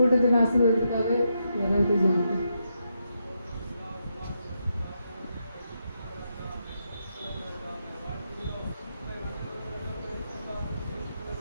ஆசீர்வாதத்துக்காக எல்லாருக்கும் ஜெபிப்போம்.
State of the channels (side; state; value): both; inverted; correlation -0.82